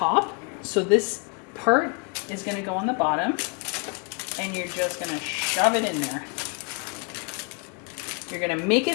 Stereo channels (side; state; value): right; quieter; 34.6 dB